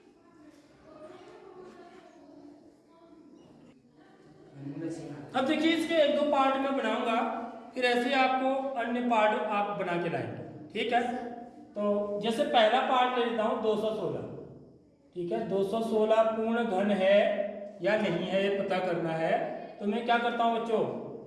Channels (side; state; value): both; identical; correlation 1.00